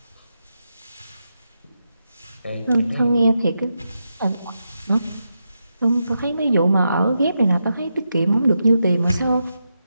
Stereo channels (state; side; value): inverted; both; correlation -0.86